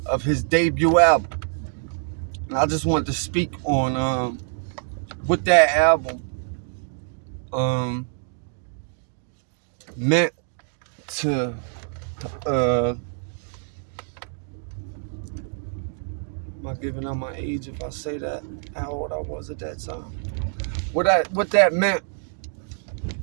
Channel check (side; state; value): left; silent; 62 dB below the other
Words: of his debut album. And I just wanted to speak on, what that album, meant to, am I giving out my age if I say that? How old I was at that time? What that meant